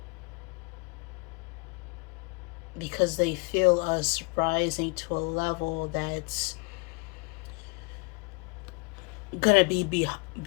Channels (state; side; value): quieter; right; 30.8 dB